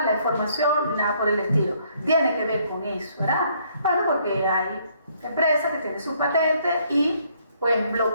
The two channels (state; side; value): inverted; both; correlation -0.66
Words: la información ni nada por el estilo. Tiene que ver con eso, ¿verdad? Bueno, porque hay empresas que tienen sus patentes y pues